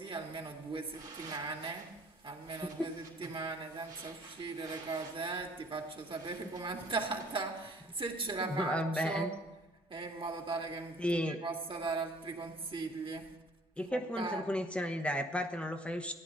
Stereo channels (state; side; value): normal; both; correlation 0.56